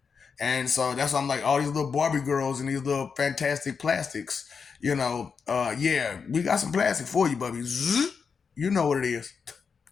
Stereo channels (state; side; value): quieter; right; 5.8 dB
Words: And so that's why I'm like, all these little Barbie girls and these little fantastic plastics, you know, yeah, we got some plastic for you, Bubby. Zzz, you know what it is.